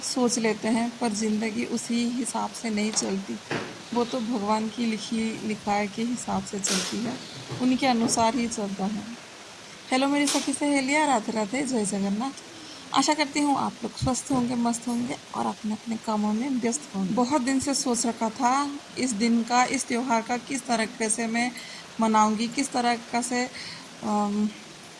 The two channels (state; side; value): identical; both; correlation 1.00